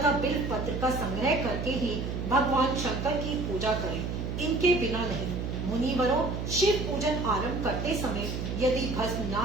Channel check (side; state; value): right; noise; hum, 4 dB below the sound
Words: बिल्व पत्र का संग्रह करके ही भगवान शंकर की पूजा करे, इनके बिना नहीं। मुनिवरों, शिव पूजन आरंभ करते समय यदि भस्म